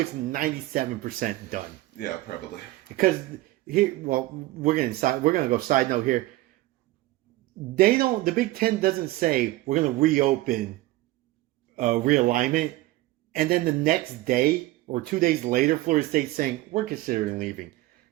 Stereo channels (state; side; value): quieter; left; 18.0 dB